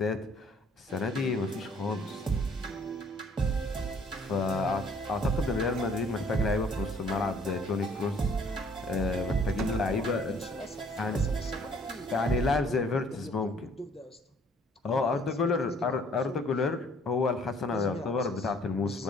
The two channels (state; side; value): normal; both; correlation 0.59